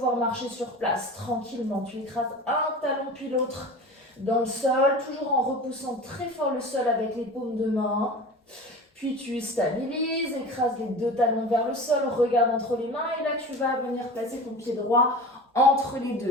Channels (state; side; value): normal; both; correlation 0.34